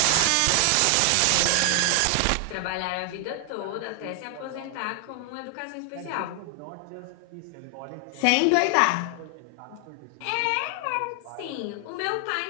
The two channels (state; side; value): different; both; correlation 0.00